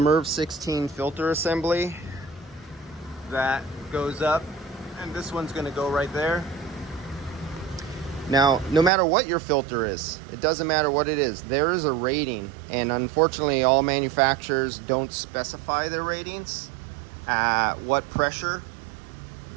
16 filter assembly that goes up, and this one's going to go right there. Now, no matter what your filter is, it doesn't matter what it is, there is a rating, and unfortunately all manufacturers don't specify their ratings at what pressure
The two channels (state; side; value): drops out; left; at 8.9 s